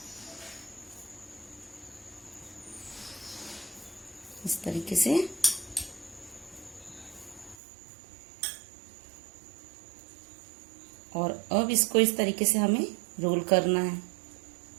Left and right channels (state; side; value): drops out; left; at 7.6 s